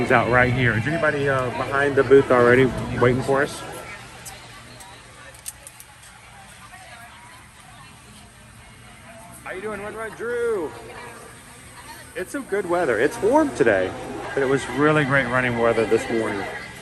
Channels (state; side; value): identical; both; correlation 1.00